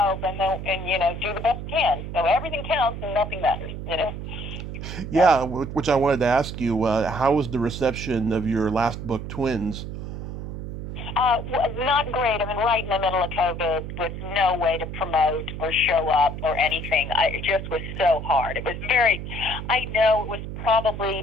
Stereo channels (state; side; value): noise; right; hum, 7 dB below the sound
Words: and do the best you can. So everything counts and nothing matters. Yeah, which I wanted to ask you. How was the reception of your last book, Twins? Not great. I mean, right in the middle of COVID with no way to promote or show up or anything. It just was so hard. It was I know it was